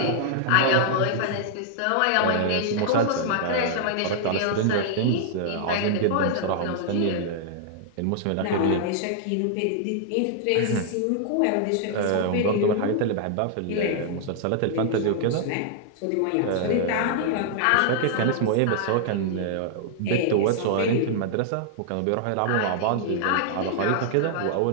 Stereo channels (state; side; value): different; both; correlation -0.01